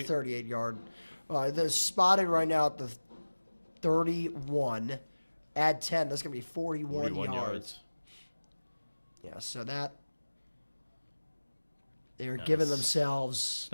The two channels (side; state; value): both; inverted; correlation -1.00